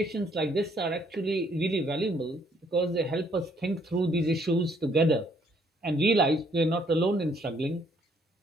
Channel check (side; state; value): both; normal; correlation 0.66